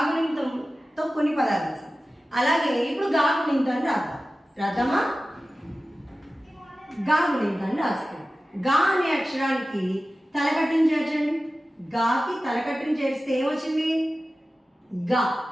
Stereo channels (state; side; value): normal; both; correlation 0.95